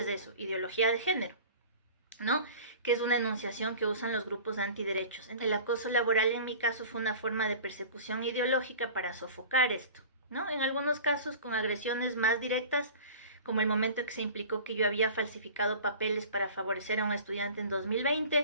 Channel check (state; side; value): inverted; both; correlation -0.40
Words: eso? Ideología de género, ¿no? Que es una enunciación que usan los grupos antiderechos. El acoso laboral en mi caso fue una forma de persecución ideológica para sofocar esto, ¿no? En algunos casos con agresiones más directas, como el momento en que se implicó que yo había falsificado papeles para favorecer a un estudiante en